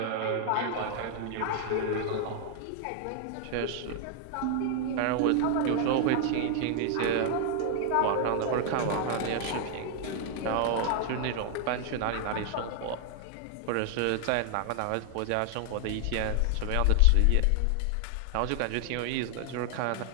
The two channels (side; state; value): both; different; correlation 0.00